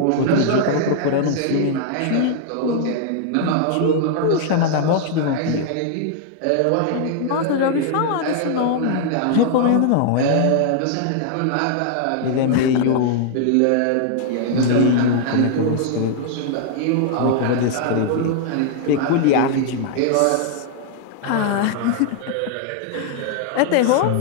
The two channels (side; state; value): both; different; correlation -0.01